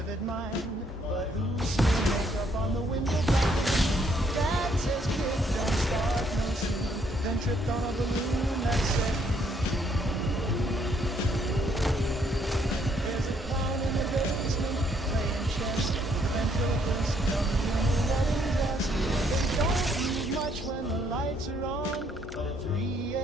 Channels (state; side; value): normal; both; correlation 0.69